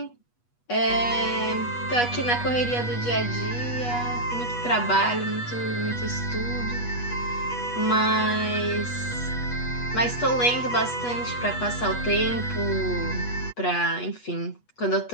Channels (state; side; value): late; right; 8.2 ms